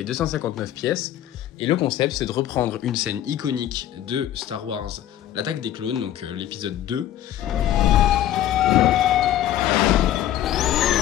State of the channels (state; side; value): quieter; right; 12.1 dB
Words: 259 pièces, et le concept c'est de reprendre une scène iconique de Star Wars, l'attaque des clones, donc l'épisode 2.